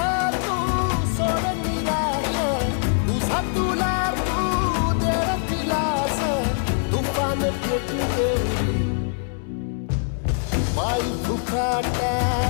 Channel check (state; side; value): silent; right; digital silence